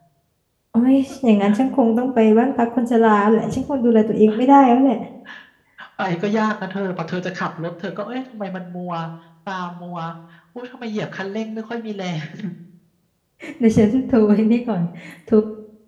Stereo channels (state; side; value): identical; both; correlation 1.00